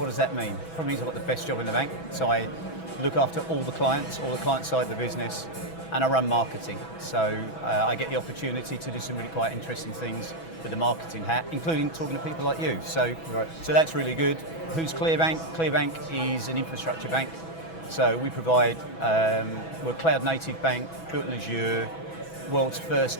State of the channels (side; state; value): right; late; 6.1 ms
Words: does that mean? Probably means I've got the best job in the bank. So I look after all the client side of the business, and I run marketing. So I get the opportunity to do some really quite interesting things with the marketing hat, including talking to people like you. So that's really good. Who's Clearbank? Clearbank is an infrastructure bank. So we provide, we're a cloud native bank, built in Azure, world's first